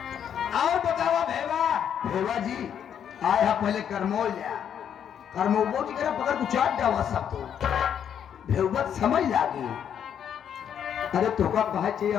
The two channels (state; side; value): quieter; right; 8.8 dB